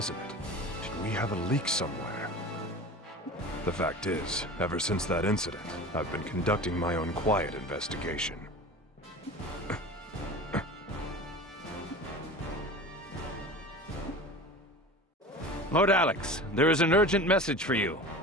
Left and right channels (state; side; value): normal; both; correlation 0.35